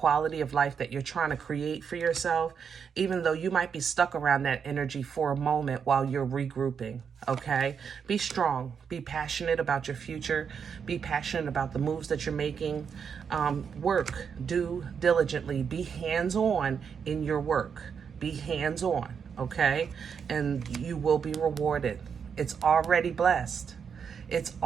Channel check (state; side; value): quieter; left; 6.8 dB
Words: of life that you're trying to create for yourself, even though you might be stuck around that energy for a moment while you're regrouping, okay? Be strong. Be passionate about your future. Be passionate about the moves that you're making. Work. Do diligently. Be hands-on in your work. Be hands-on, okay? And you will be rewarded. It's already blessed. It's